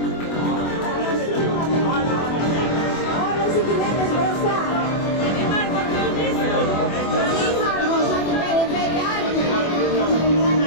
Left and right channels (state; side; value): late; right; 24 ms